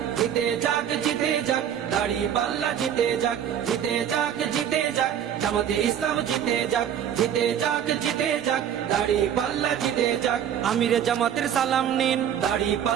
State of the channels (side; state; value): left; quieter; 9.4 dB